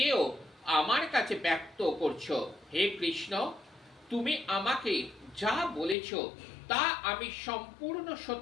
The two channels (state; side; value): drops out; right; at 6.0 s